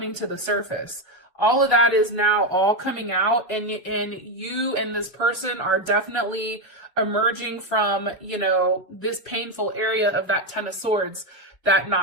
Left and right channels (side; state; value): both; normal; correlation 0.09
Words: to the surface. All of that is now all coming out, and you and this person are definitely emerging from, this painful area of that Ten of Swords, that